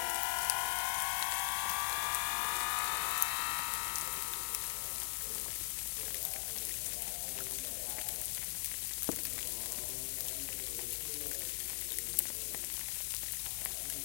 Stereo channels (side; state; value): right; silent; digital silence